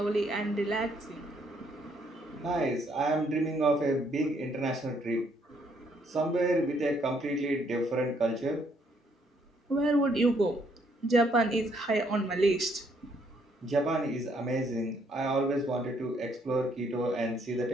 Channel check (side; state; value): both; normal; correlation 0.69